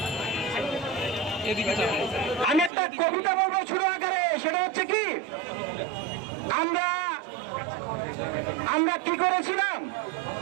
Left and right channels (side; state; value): left; drops out; at 2.7 s